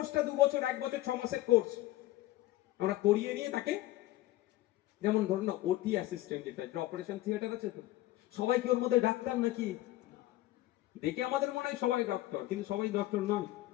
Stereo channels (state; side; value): quieter; right; 16.4 dB